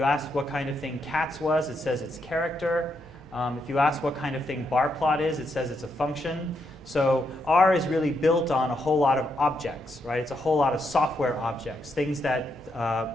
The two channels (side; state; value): both; normal; correlation 0.80